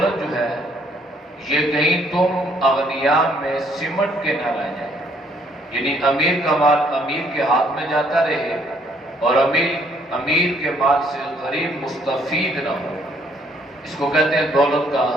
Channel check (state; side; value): normal; both; correlation 0.66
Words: جو ہے یہ کہیں تم اغنیاء میں سمٹ کے نہ رہ جائے، یعنی امیر کا مال امیر کے ہاتھ میں جاتا رہے اور امیر کے مال سے غریب مستفید نہ ہو۔ اس کو کہتے ہیں دولت کا